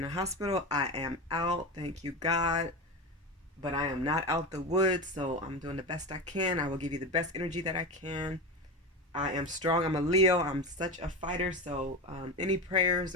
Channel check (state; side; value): normal; both; correlation 0.22